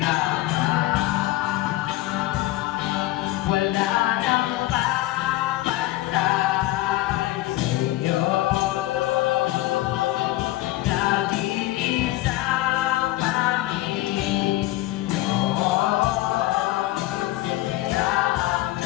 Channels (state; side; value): quieter; right; 16.9 dB